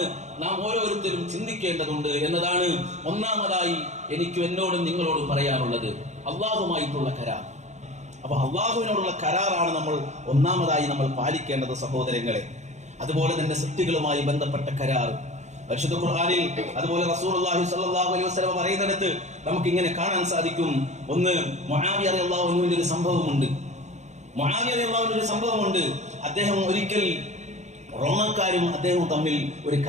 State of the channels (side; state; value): left; late; 0.33 ms